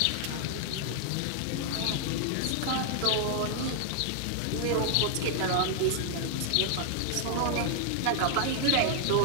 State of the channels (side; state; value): both; different; correlation 0.00